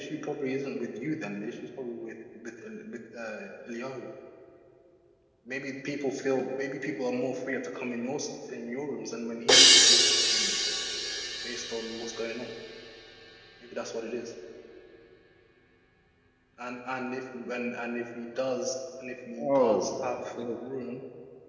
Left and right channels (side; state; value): both; identical; correlation 1.00